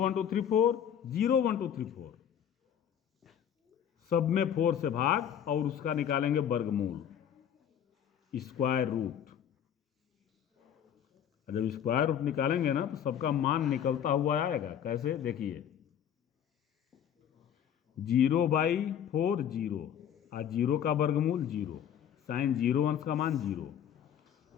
2, 3, 4, 0, 1, 2, 3, 4 सब में 4 से भाग और उसका निकालेंगे वर्गमूल, स्क्वायर रूट। जब स्क्वायर रूट निकालेंगे ना तो सबका मान निकलता हुआ आएगा। कैसे? देखिए 0/4 0 और 0 का वर्गमूल 0, साइन 0 अंश का मान 0,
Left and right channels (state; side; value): quieter; right; 9.2 dB